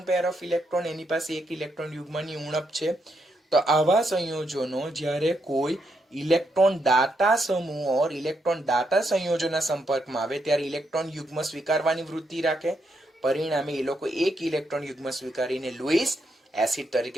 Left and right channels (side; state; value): both; normal; correlation 0.79